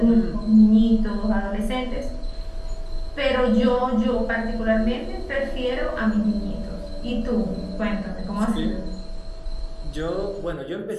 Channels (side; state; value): both; identical; correlation 1.00